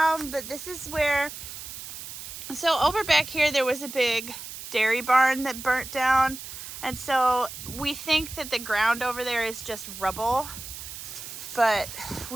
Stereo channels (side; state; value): right; noise; hiss, 11 dB below the sound